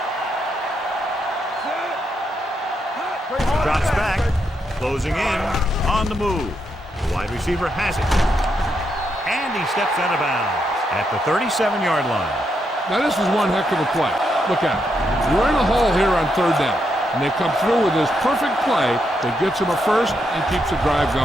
Drops back, closing in, on the move. The wide receiver has it. And he steps out of bounds at the 37-yard line. Now this is one heck of a play. Look at it. We're in a hole here on third down, and they come through with this perfect play that gets them a first and keeps the drive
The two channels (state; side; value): normal; both; correlation 0.80